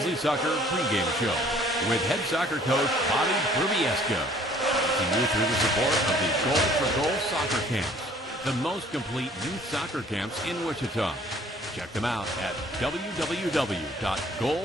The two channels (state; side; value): normal; both; correlation 0.55